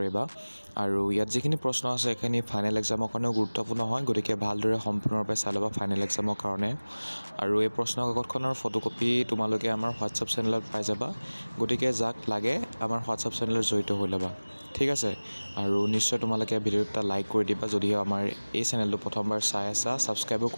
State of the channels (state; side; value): inverted; both; correlation -1.00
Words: আৰু ইয়াত যিখিনি প্ৰশ্ন আছে সেইখিনি ফাইনেল এক্সামৰ কাৰণেও গুৰুত্বপূৰ্ণ হয়, গতিকে ভালদৰে সম্পূৰ্ণৰূপে চাই ল'বা ফাইনেল এক্সামৰ কাৰণে। আৰু এই প্ৰশ্ন কাকতখনৰ ফটোকপি তোমালোকে আমাৰ হোৱাটছআপ চেনেলত পাই যাবা, গতিকে যাক লাগে আমাৰ হোৱাটছআপ চেনেলত জড়িত হৈ ল'বা। ঠিক আছে, আৰু নিশ্চয় তোমালোকে ভিডিঅ'টো এটা লাইক কৰি দিবা। যদিহে আমাৰ এই চেনেলটো প্ৰথমবাৰ চাই আছা, ছাবস্ক্ৰাইবো